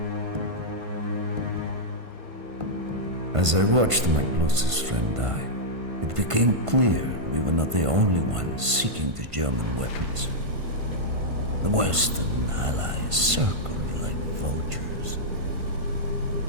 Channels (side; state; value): left; late; 1.5 ms